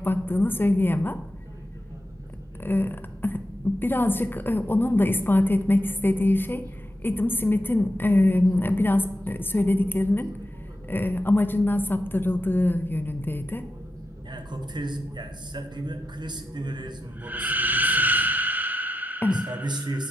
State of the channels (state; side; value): normal; both; correlation 0.89